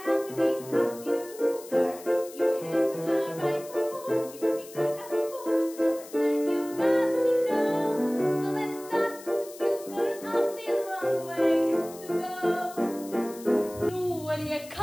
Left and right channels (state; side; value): noise; left; hiss, 18 dB below the sound